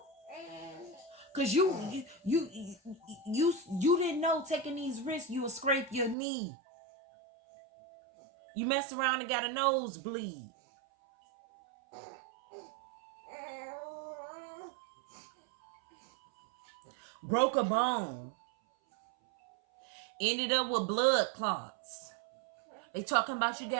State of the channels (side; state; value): left; drops out; at 6.2 s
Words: Because you didn't know taking these risks, you would scrape your knee. You mess around and got a nosebleed. Broke a bone. Ended up with blood clots. They talking about you